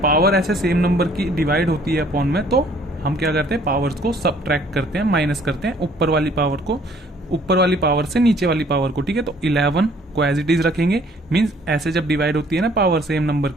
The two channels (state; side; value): normal; both; correlation 0.59